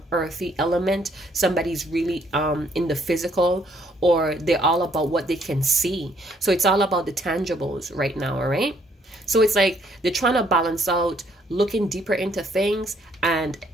earthy element. Somebody's really in the physical, or they're all about what they can see. So it's all about the tangibles right now, all right? So it's like they're trying to balance out looking deeper into things and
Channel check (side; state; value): both; normal; correlation 0.67